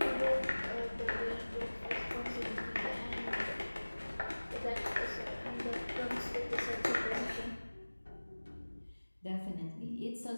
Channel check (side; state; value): both; inverted; correlation -1.00